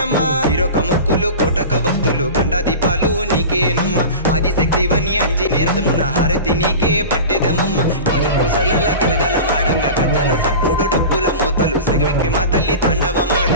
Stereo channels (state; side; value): inverted; both; correlation -0.32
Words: ఇరొక మొక్కులు కోటక భక్తులు గండ దీపాలు నీకేనమ్మ ఆదిశక్తివని అంజనేరదమున హారతి నీకే పట్టెదమమ్మ కాజు పూసలల్ల గలగల మాడంగా గజ్జల సప్పుడు డప్పుల మోతలు సెగవిక్కి మా తల్లి